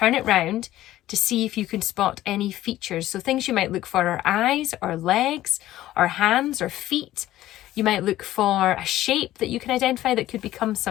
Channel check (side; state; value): right; quieter; 14.6 dB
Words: it round to see if you can spot any features. So things you might look for are eyes or legs or hands or feet. You might look for a shape that you can identify that could become